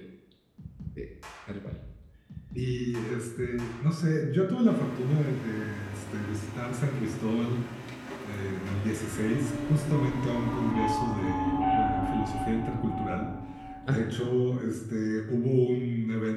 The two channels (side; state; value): both; identical; correlation 1.00